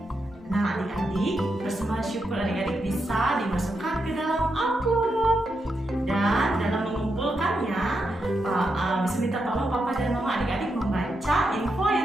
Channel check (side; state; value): both; normal; correlation 0.84